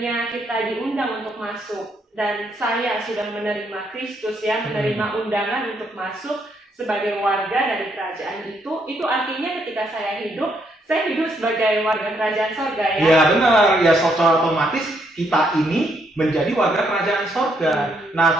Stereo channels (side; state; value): both; normal; correlation 0.74